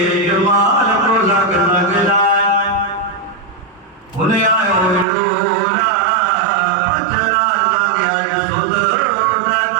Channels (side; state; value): left; drops out; at 5.1 s